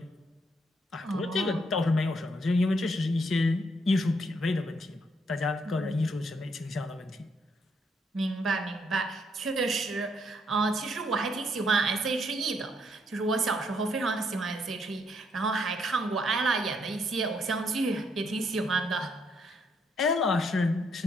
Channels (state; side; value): normal; both; correlation 0.73